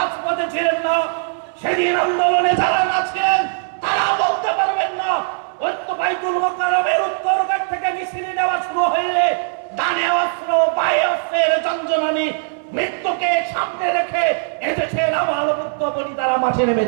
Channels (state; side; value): silent; left; 66 dB below the other